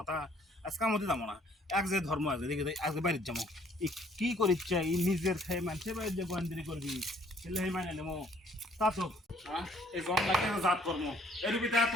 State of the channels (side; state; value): both; normal; correlation 0.61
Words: আজকে আমাদের যাবো না এক যে ধর্ম আছে দেখে আজকে বাড়ির যাবো কি করিচ্ছে এই নিজের খেয়ে মানুষের বাড়ির যে গোয়েন্দ্রি করবি এলে মানে নেবো তা তো এই জন্নাকে জাত কর্ম এর ভিতরে